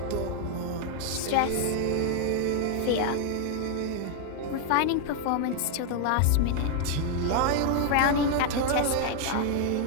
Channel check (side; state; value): both; different; correlation 0.00